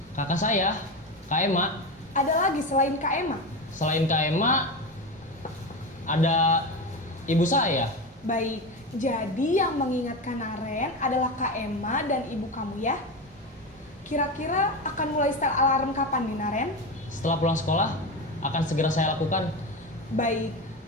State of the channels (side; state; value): both; normal; correlation 0.20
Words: kakak saya, Kak Ema. Ada lagi selain Kak Emma? Selain Kak Ema, ada ibu saya. Baik, jadi yang mengingatkan Naren adalah Kak Emma dan ibu kamu ya? Kira-kira akan mulai setel alarm kapan nih Naren? Setelah pulang sekolah, akan segera saya lakukan. Baik,